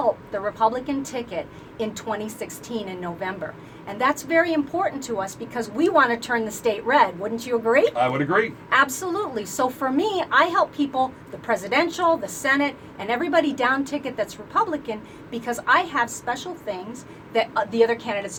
the Republican ticket in 2016 in November. And that's very important to us because we want to turn the state red. Wouldn't you agree? I would agree. Absolutely. So for me, I help people, the presidential, the Senate, and everybody down ticket that's Republican because I have special things that the other candidates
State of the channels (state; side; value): identical; both; correlation 1.00